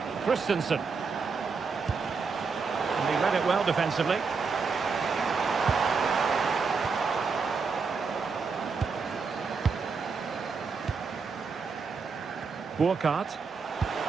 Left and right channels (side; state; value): left; quieter; 5.0 dB